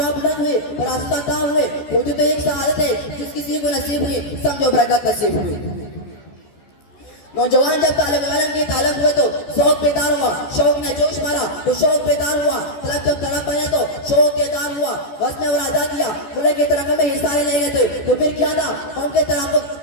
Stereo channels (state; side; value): late; right; 14 ms